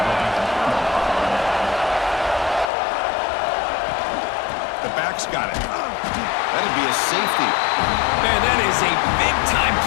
The back's got it. That'd be a safety. Man, that is a big-time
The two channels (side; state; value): right; drops out; at 2.7 s